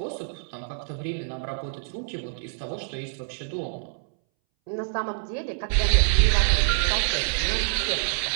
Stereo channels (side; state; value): left; silent; 61 dB below the other